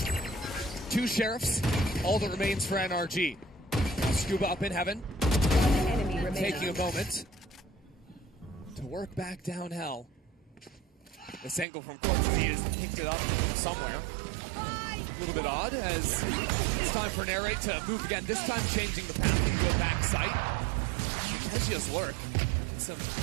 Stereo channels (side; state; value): left; drops out; at 11.7 s